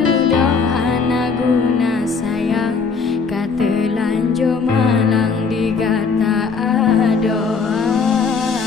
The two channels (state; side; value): quieter; right; 5.1 dB